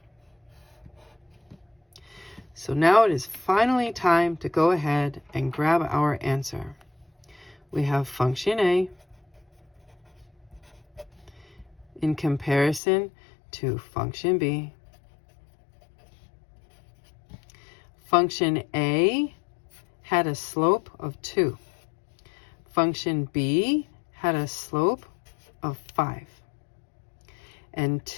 So now it is finally time to go ahead and grab our answer. We have function A in comparison to function B. Function A had a slope of 2. Function B had a slope of 5. And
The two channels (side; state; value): right; drops out; at 12.8 s